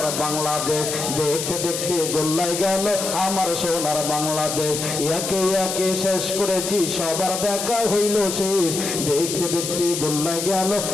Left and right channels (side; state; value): left; noise; hiss, 4 dB below the sound